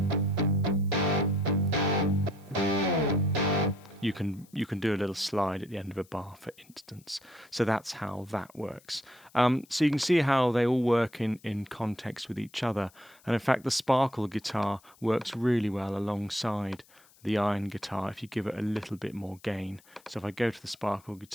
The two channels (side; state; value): left; noise; hiss, 28 dB below the sound